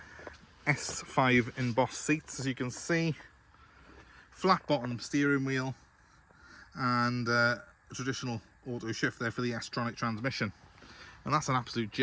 S5 embossed seats, as you can see. Flat bottom steering wheel, and a traditional auto shift there for the S-TRONIC transmission, and that's an absolute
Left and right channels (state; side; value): identical; both; correlation 1.00